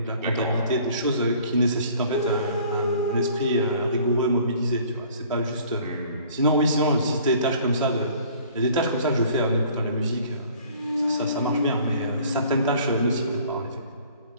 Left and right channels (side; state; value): both; inverted; correlation -0.53